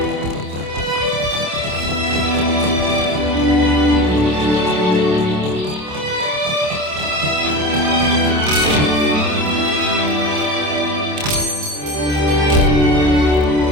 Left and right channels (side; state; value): left; late; 27 ms